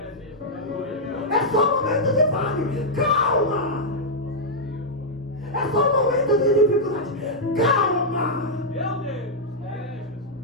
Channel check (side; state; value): both; normal; correlation -0.06